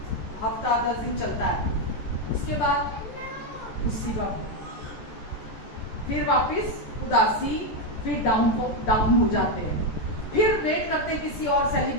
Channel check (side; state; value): right; late; 14 ms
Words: हफ्ता 10 दिन चलता है, उसके बाद उसी वक्त फिर वापस उदासी, फिर डाउन हो जाते हैं। फिर वेट करते हैं किसी और